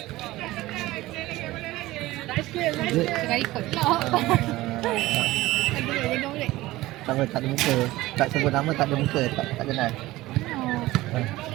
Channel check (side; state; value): left; quieter; 17.9 dB